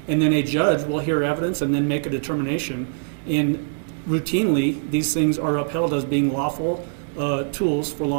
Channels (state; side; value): silent; left; digital silence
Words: And then a judge will hear evidence and then make a determination. And routinely, these things are upheld as being lawful tools for